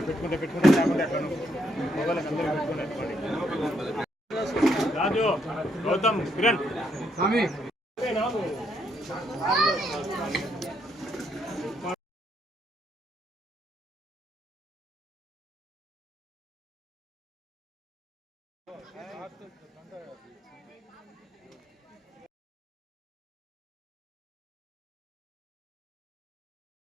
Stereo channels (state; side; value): normal; both; correlation 0.75